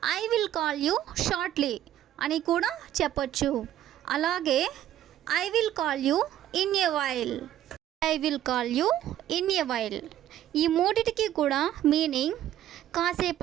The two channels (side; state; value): left; quieter; 12.2 dB